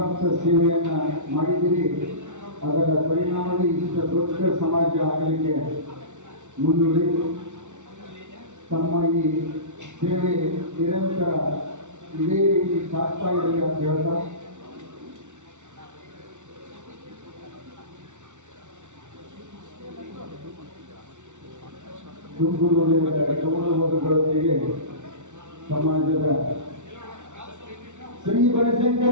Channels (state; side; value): late; left; 0.84 ms